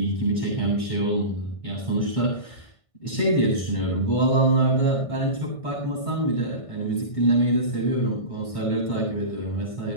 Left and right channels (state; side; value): late; right; 1.6 ms